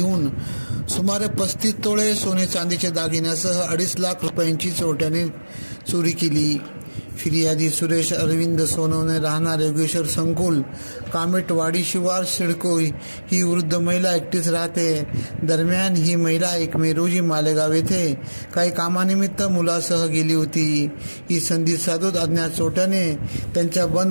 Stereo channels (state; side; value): inverted; both; correlation -1.00